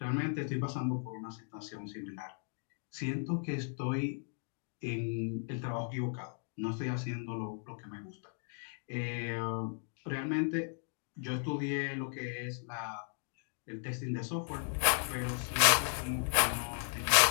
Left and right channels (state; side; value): silent; right; 54 dB below the other